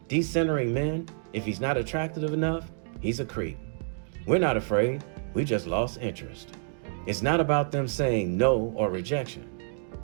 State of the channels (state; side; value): silent; left; digital silence